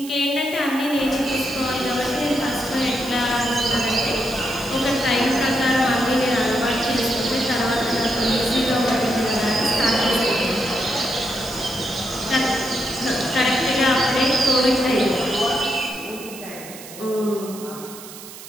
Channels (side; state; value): right; noise; hiss, 15 dB below the sound